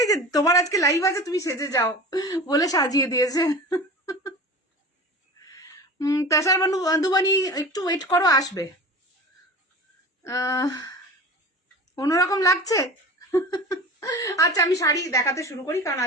যে তোমার আজকে লাইভ আছে তুমি সেজে যাও বলে সাজিয়ে দিয়েছে। তাছাড়া বান্ধবানি একটু ওয়েট করো, আসবে। অন্যরকম লাগছে। আচ্ছা আমি শাড়ি দেখাতে শুরু করি, কারণ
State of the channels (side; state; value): both; normal; correlation 0.35